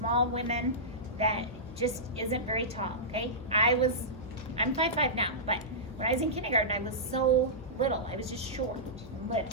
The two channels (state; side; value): normal; both; correlation -0.16